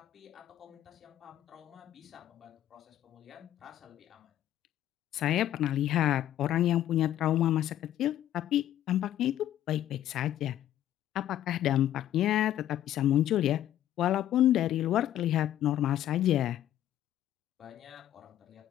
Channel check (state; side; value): quieter; right; 12.1 dB